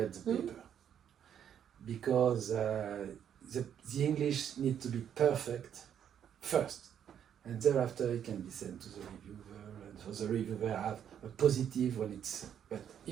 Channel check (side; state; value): left; quieter; 9.1 dB